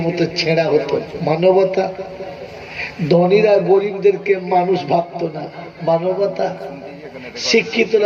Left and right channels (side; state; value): both; identical; correlation 1.00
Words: মতো ছেঁড়া হতো, মানবতা। ধনীরা গরিবদেরকে মানুষ ভাবতো না, মানবতা।